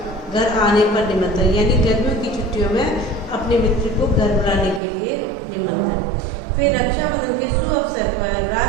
घर आने पर निमंत्रण, यानी गर्मियों की छुट्टियों में अपने मित्र को घर बुलाने के लिए निमंत्रण। फिर रक्षाबंधन के शुभ अवसर पर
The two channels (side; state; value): left; drops out; at 4.8 s